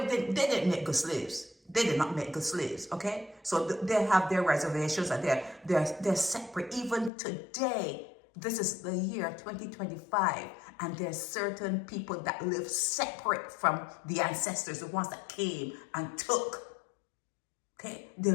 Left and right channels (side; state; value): right; drops out; at 7.1 s